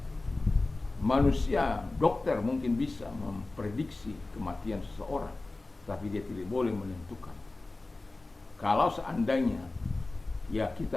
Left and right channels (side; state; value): right; quieter; 3.2 dB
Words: Manusia, dokter mungkin bisa memprediksi kematian seseorang, tapi dia tidak boleh menentukan. Kalau seandainya ya